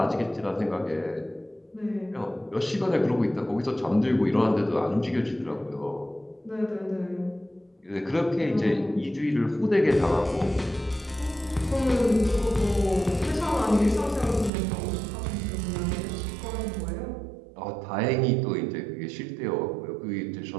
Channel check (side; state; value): left; drops out; at 14.5 s